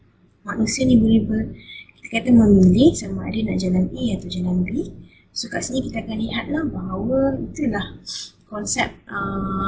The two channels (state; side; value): identical; both; correlation 1.00